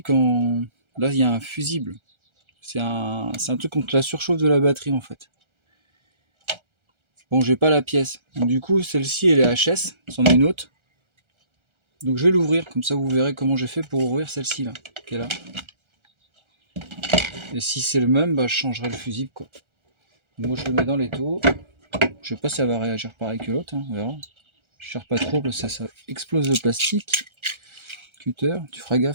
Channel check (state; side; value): late; left; 1.3 ms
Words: là il y a un fusible. C'est un truc contre la surchauffe de la batterie en fait. Bon, j'ai pas la pièce. Donc, du coup, celle-ci elle est HS, c'en est une autre. Donc je vais l'ouvrir, comme ça vous verrez comment j'ai fait pour ouvrir celle-ci là, qui est là. Et si c'est le même, bah je changerai le fusible quoi. Moi je le mets dans l'étau. Je sais pas si ça va réagir pareil que l'autre, hein, on verra. Je cherche pas trop parce que ça explose le plastique. Cutter, tu feras